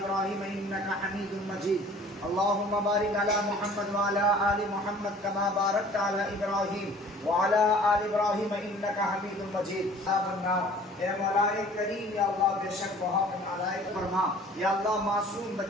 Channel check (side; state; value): both; normal; correlation 0.50